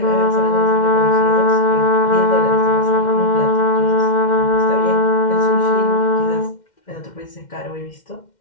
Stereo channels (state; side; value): late; right; 2.1 ms